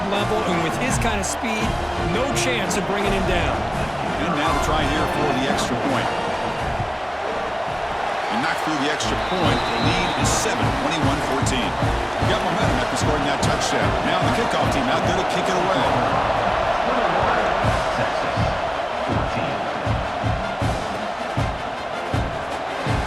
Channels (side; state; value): both; identical; correlation 1.00